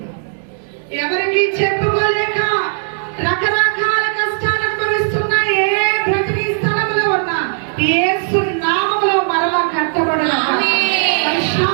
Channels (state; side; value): silent; left; digital silence